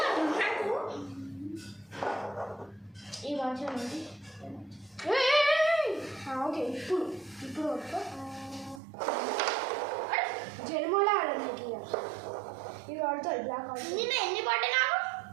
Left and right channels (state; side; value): drops out; left; at 8.8 s